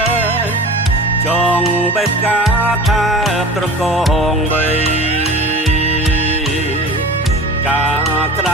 ចងបេះកាថាត្រកងបីការក្ត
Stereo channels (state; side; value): normal; both; correlation 0.37